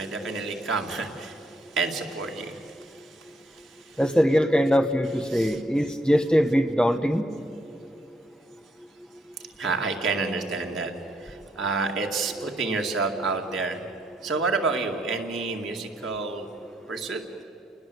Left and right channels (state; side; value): normal; both; correlation 0.74